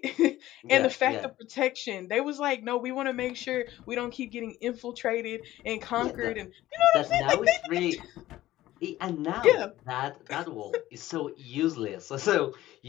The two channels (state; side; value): quieter; right; 15.2 dB